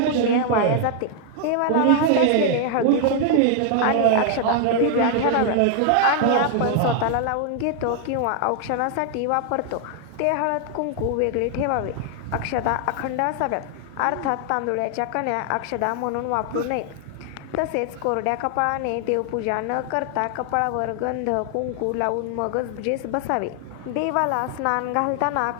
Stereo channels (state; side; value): different; both; correlation 0.00